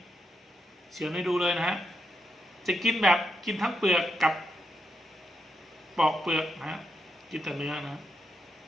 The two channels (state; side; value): normal; both; correlation 0.83